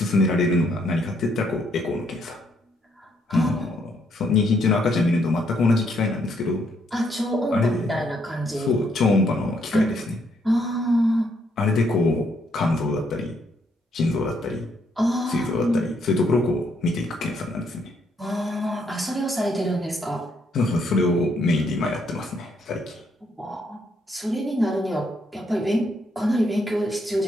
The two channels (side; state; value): both; normal; correlation 0.73